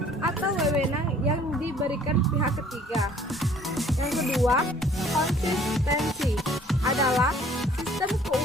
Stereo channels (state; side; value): normal; both; correlation 0.56